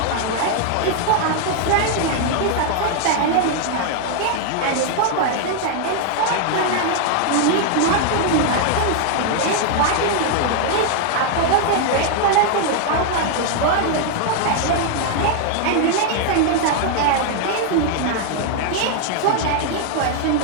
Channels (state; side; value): different; both; correlation 0.00